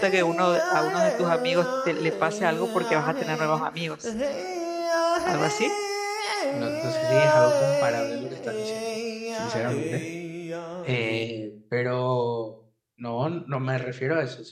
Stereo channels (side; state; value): both; identical; correlation 1.00